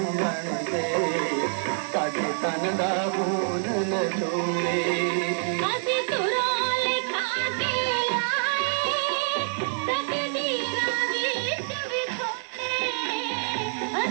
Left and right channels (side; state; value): left; silent; digital silence